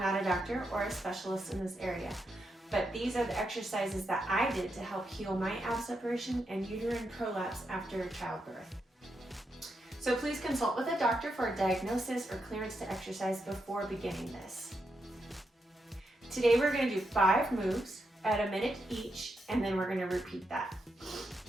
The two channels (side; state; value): both; normal; correlation 0.83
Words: a doctor or a specialist in this area, but these are the exercises that I did to help heal my ab separation and uterine prolapse after childbirth. So please consult with a doctor for a diagnosis or clearance to exercise before beginning this. Today we're going to do 5 moves at a minute each, and then we're going to repeat that.